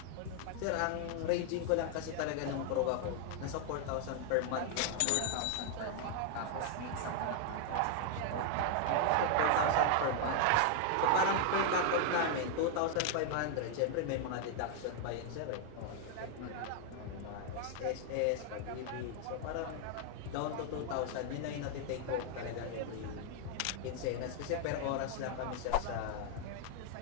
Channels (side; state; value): both; different; correlation 0.00